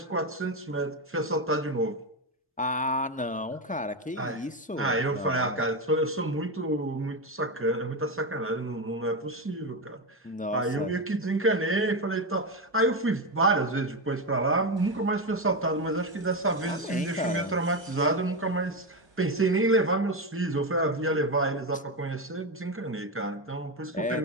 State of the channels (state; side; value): normal; both; correlation 0.12